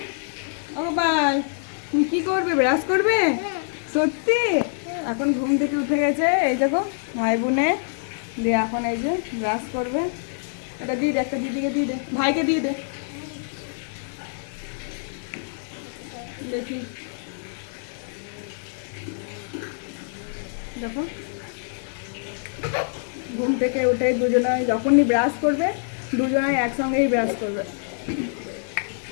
ও গোপাল, তুমি কি করবে? ব্রাশ করবে? সত্যি? এখন ঘুম থেকে উঠে গেছে, এই দেখো ভাই বোনে দিয়ে এখন এই যে ব্রাশ করবে। এটা দিয়ে দে, একটা দিদিকে দিয়ে দে, ভাইকে দিয়ে দে। দেখি, দেখো ঘুম থেকে উঠে দুজনে যখনই ব্রাশ করবে দুজনে একসঙ্গেই ব্রাশ করবে।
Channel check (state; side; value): silent; right; 60 dB below the other